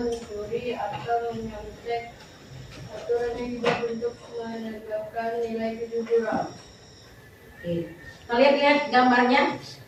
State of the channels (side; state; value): both; identical; correlation 1.00